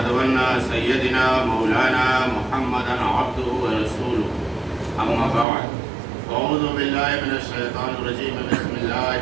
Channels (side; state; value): left; drops out; at 5.5 s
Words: أن سيدنا مولانا محمدا عبده ورسوله أما بعد أعوذ بالله من الشيطان الرجيم بسم الله